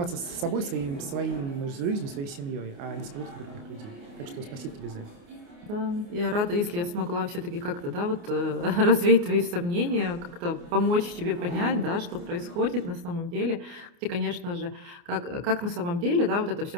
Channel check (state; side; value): late; left; 29 ms